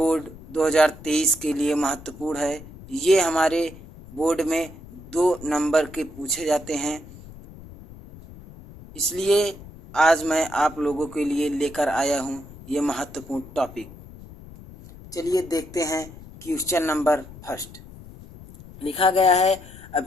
2023 के लिए महत्वपूर्ण है। ये हमारे बोर्ड में 2 नंबर के पूछे जाते हैं, इसलिए आज मैं आप लोगों के लिए लेकर आया हूँ ये महत्वपूर्ण टॉपिक। चलिए देखते हैं क्वेश्चन नंबर फर्स्ट। लिखा गया है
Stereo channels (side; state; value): left; noise; rumble, 18 dB below the sound